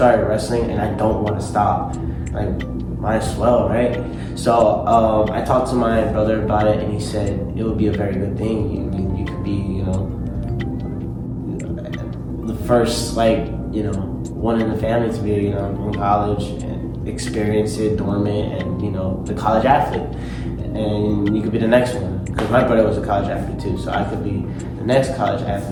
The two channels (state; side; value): identical; both; correlation 1.00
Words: wrestling and I don't want to stop. Like, might as well, right? So I talked to my brother about it, and he said it would be a very good thing. You could be, the first, one in the family to be, in college and experience it, dormant, and the college athlete. And you could be the next one, because my brother was a college athlete too, so I could be the next college